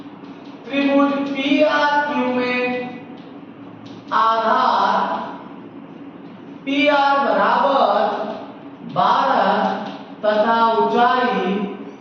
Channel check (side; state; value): both; identical; correlation 1.00